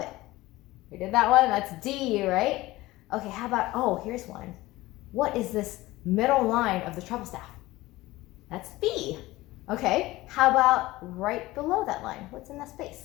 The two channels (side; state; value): right; quieter; 18.6 dB